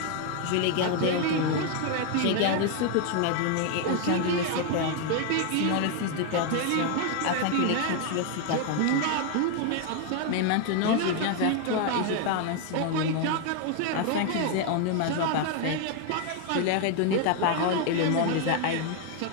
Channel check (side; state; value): both; different; correlation 0.01